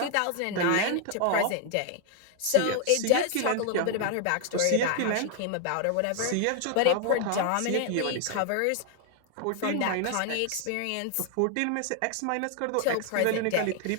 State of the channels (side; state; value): both; different; correlation 0.00